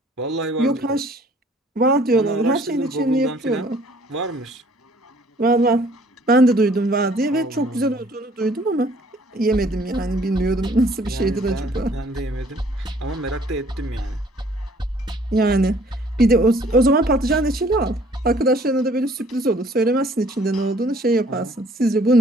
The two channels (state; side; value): normal; both; correlation 0.57